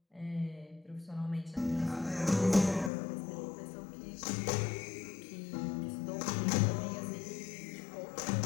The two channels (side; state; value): right; drops out; at 2.9 s